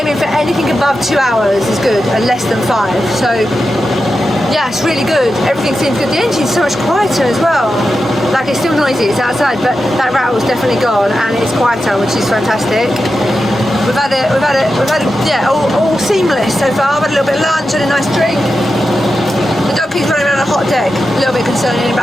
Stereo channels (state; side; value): normal; both; correlation 0.90